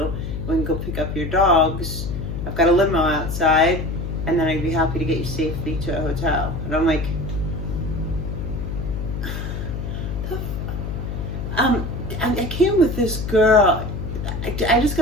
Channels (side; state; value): left; noise; hum, 5 dB below the sound